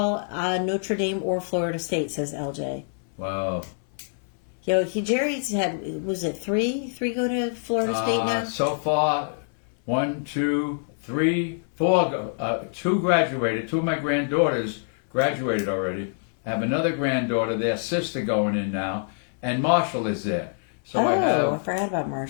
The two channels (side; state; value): right; silent; 61 dB below the other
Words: on Notre Dame or Florida State, says LJ. Wow. Jerry's had, was it three go to Florida State now? So far, 1, 2, 3, 4. 2 graduated. 2 of my granddaughters graduated already. I have another granddaughter, their sister, going in now, and Marshall is there. So I forgot about